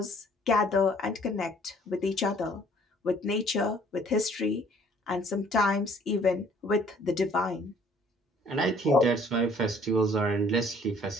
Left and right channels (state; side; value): normal; both; correlation 0.58